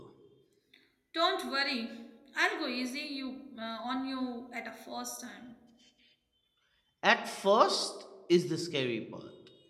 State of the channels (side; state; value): both; identical; correlation 1.00